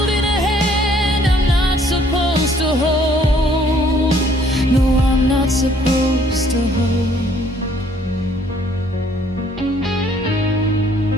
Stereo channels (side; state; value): both; normal; correlation 0.62